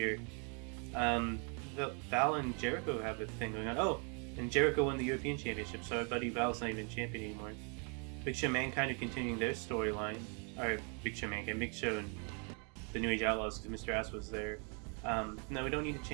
Val and Jericho have a thing going on. Oh, and Jericho won the European Championship, so our buddy Val's not even champion anymore. Big Show Mankind are continuing their storyline. Or Big Show Mankind, Big Show and the New Age Outlaws, because Mr. Ass was there. No, we don't need to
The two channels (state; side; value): quieter; left; 37.6 dB